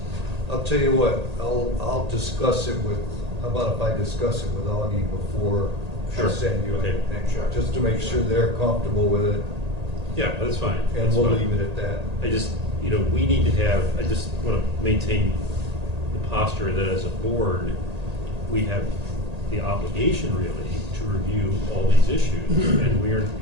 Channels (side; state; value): left; late; 1.8 ms